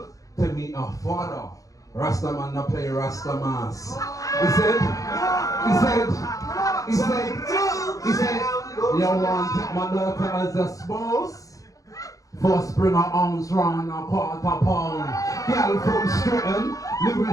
to meet her father. Rastaman no play Rastamas. He said, you want to take my daughter as a spouse? First bring her arms round a quarter pound. Girl from Stratton,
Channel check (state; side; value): late; right; 0.16 ms